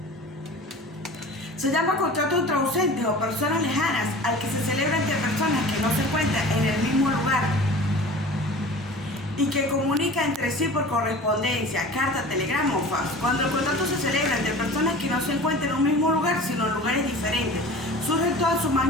Se llama contrato entre ausentes o personas lejanas al que se celebra entre personas que no se encuentran en el mismo lugar y que comunica entre sí por correspondencia, carta, telegrama o fax. Cuando el contrato se celebra entre personas que no se encuentran en un mismo lugar, sino en lugares diferentes, surge en toda su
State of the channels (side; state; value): both; normal; correlation 0.39